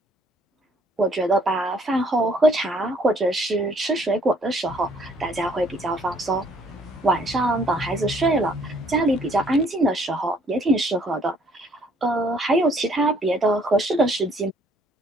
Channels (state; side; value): normal; both; correlation 0.63